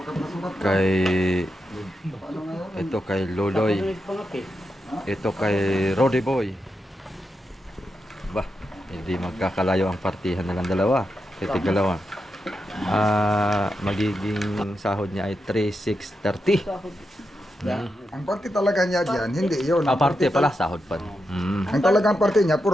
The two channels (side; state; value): both; normal; correlation 0.86